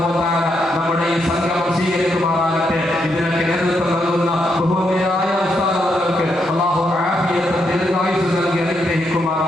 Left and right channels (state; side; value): normal; both; correlation 0.79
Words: വ തആല നമ്മുടെ ഈ സംഗമം സ്വീകരിക്കുമാറാകട്ടെ. ഇതിനൊക്കെ നേതൃത്വം നൽകുന്ന ബഹുമാന്യരായ ഉസ്താദുകൾക്ക് അല്ലാഹു ആഫിയത്തും ദീർഘായുസ്സും നൽകി